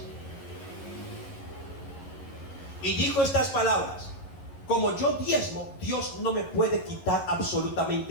Y dijo estas palabras: como yo diezmo, Dios no me puede quitar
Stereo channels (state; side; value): late; right; 11 ms